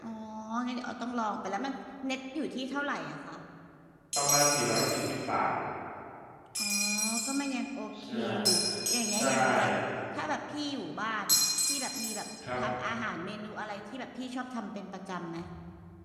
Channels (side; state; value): both; identical; correlation 1.00